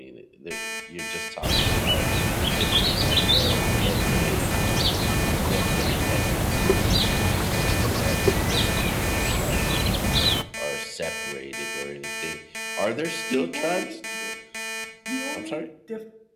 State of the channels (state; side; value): identical; both; correlation 1.00